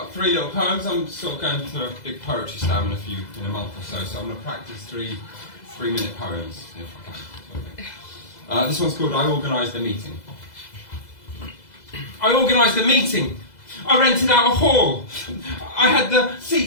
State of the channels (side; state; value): right; late; 2.0 ms